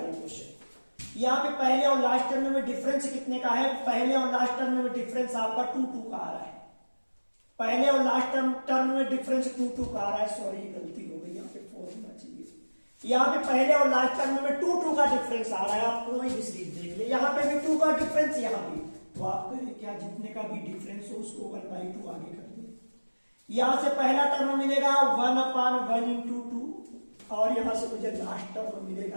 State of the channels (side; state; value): both; inverted; correlation -1.00